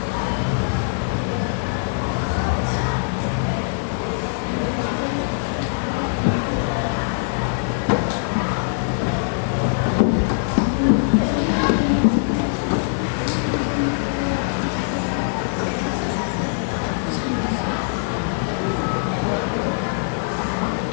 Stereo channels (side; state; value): right; silent; digital silence